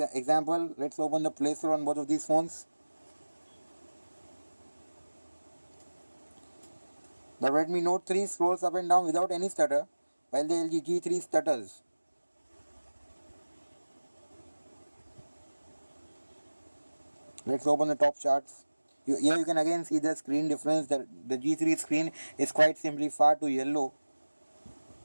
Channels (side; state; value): both; inverted; correlation -1.00